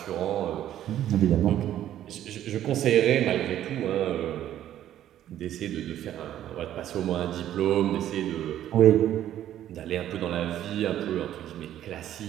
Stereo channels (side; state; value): left; quieter; 11.8 dB